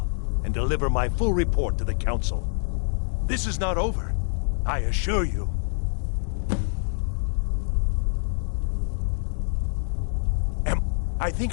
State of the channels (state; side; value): silent; right; digital silence